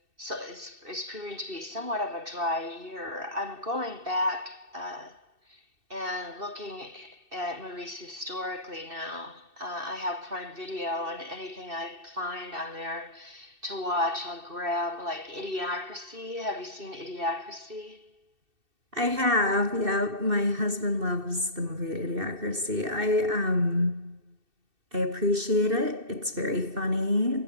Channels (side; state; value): left; late; 2.6 ms